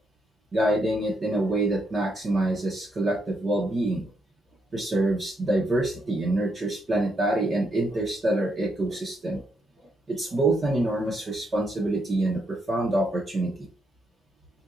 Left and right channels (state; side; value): normal; both; correlation 0.78